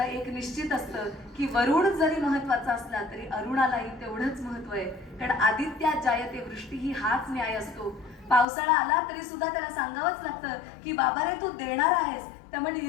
एक निश्चित असतं की वरुण जरी महत्वाचा असला तरी अरुणालाही तेवढंच महत्व आहे. कारण आदित्यात जायते वृष्टी ही हाच न्याय असतो. पावसाळा आला तरी सुद्धा त्याला सांगावंच लागतं की बाबा रे, तू देणार आहेस, त्यामुळे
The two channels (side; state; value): right; drops out; at 8.5 s